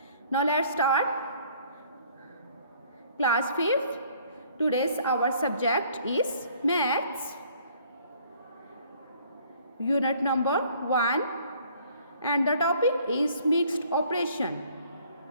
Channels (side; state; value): both; inverted; correlation -0.58